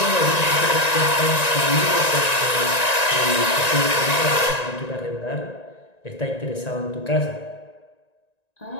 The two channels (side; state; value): right; late; 1.9 ms